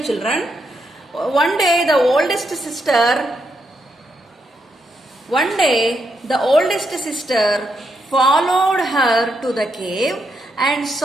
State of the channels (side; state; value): both; normal; correlation 0.81